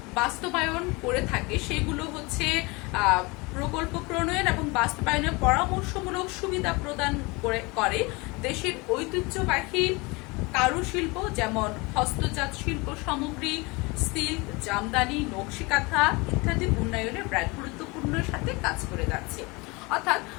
বাস্তবায়ন করে থাকে সেগুলো হচ্ছে প্রকল্প প্রণয়ন এবং বাস্তবায়নের পরামর্শমূলক সুবিধা প্রদান করে দেশের ঐতিহ্যবাহী কারুশিল্প যেমন হস্তজাত শিল্প সামগ্রী, সিল্ক, জামদানি, নকশি কাঁথা ইত্যাদি উন্নয়নে ব্র্যাক গুরুত্বপূর্ণ সাথে কাজ করে যাচ্ছে। অর্থাৎ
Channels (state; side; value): quieter; right; 25.9 dB